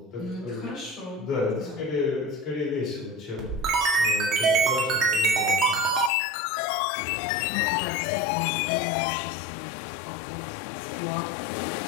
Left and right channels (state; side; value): drops out; right; at 6.1 s